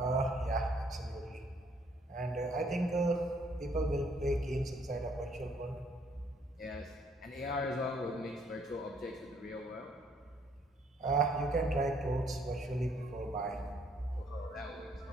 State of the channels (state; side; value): normal; both; correlation 0.66